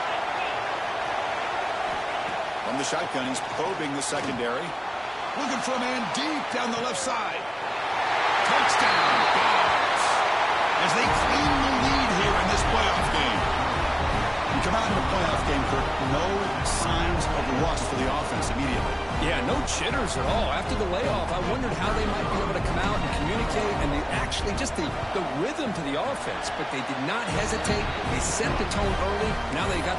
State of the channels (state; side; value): identical; both; correlation 1.00